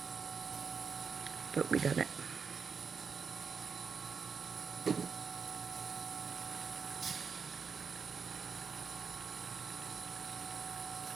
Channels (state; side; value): quieter; left; 5.8 dB